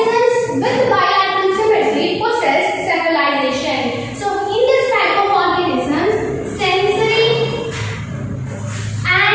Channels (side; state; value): both; identical; correlation 1.00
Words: with bilateral symmetry possess cephalization. So, in this type of organisms,